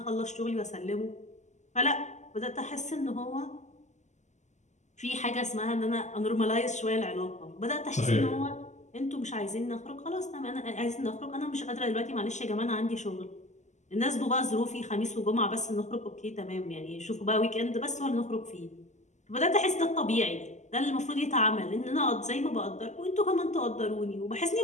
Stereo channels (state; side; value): late; right; 0.34 ms